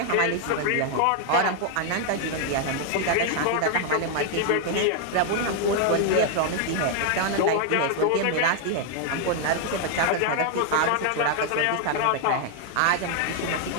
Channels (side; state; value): both; different; correlation 0.00